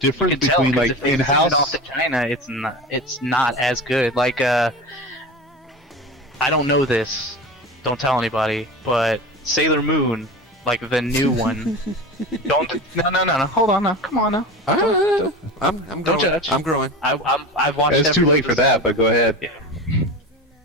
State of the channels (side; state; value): both; normal; correlation 0.29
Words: You can tell, between 'cause like if they in-house? send it off to China, it's not as good. Like I don't know this. Don't tell anybody. But Sailor Moon, like the new one. No. Hold on now. Come on now. I'm Don't growing. judge. I'm growing. I've watched. It's too late for that, but go ahead. Yeah.